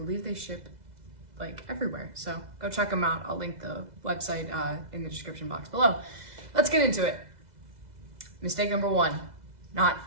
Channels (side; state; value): left; late; 2.0 ms